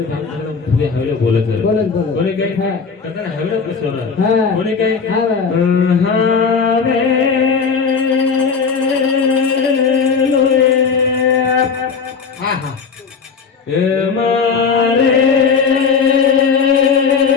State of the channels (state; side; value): quieter; right; 5.6 dB